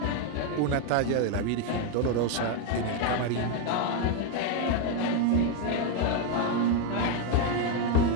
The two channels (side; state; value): both; different; correlation 0.01